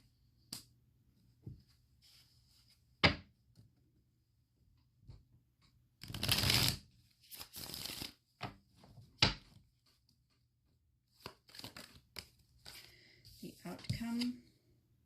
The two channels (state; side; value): identical; both; correlation 1.00